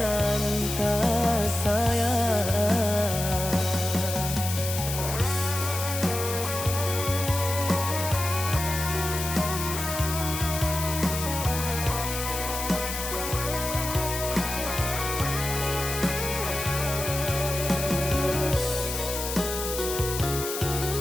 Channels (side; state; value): left; noise; hiss, 5 dB below the sound